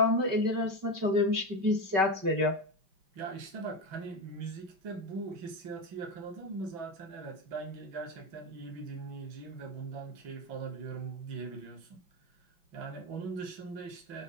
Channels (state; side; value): late; left; 5.2 ms